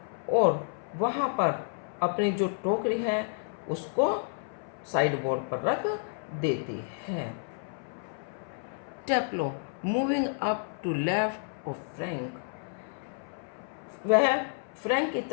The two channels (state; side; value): silent; right; 57 dB below the other